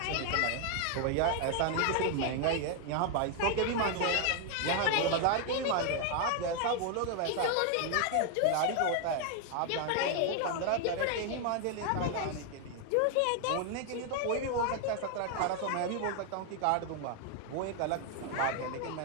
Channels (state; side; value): different; both; correlation 0.01